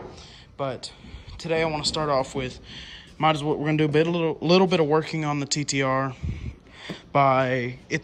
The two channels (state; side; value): identical; both; correlation 1.00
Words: But today I want to start off with, we're gonna do a little bit of working on the TTR.